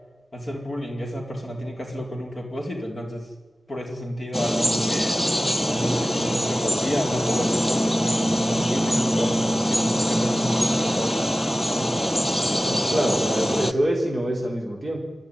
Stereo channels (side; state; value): both; normal; correlation 0.96